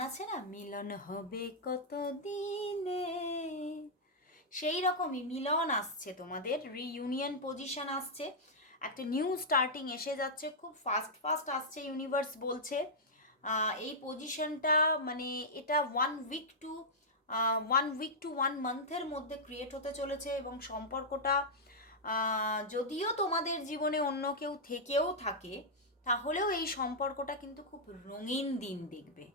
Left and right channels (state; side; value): normal; both; correlation -0.08